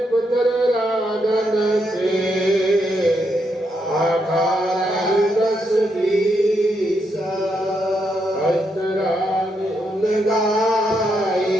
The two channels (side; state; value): both; normal; correlation 0.80